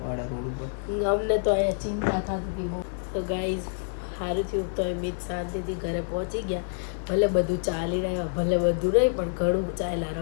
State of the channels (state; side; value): silent; right; 60 dB below the other